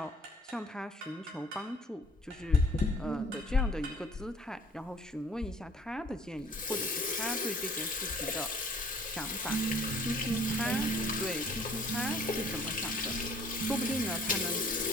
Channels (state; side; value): normal; both; correlation 0.55